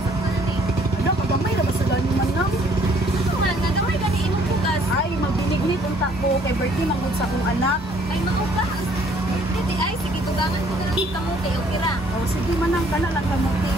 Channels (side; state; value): both; normal; correlation 0.61